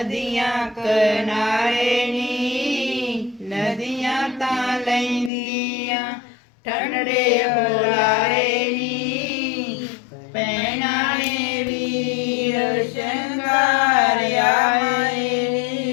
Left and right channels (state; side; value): drops out; right; at 5.3 s